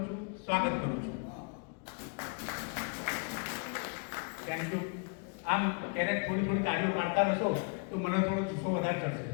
Thank you. આમ ક્યારેક થોડી તાળીઓ મારતા રહેશો તો મને થોડો જુસ્સો વધારે થશે.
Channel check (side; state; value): right; quieter; 38.2 dB